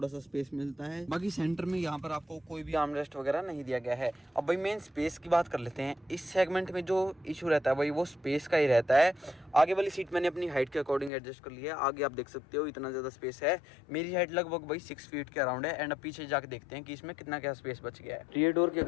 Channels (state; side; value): drops out; right; at 11.1 s